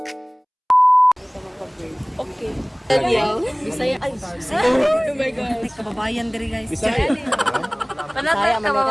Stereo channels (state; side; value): identical; both; correlation 1.00